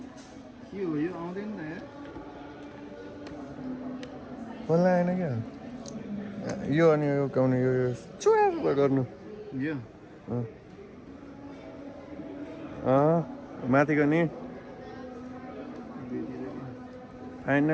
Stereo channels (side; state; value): both; identical; correlation 1.00